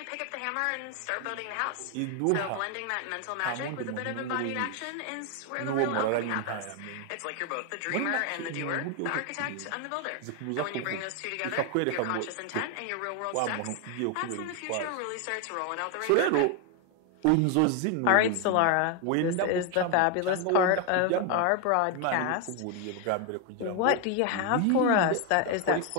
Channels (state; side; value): different; both; correlation 0.01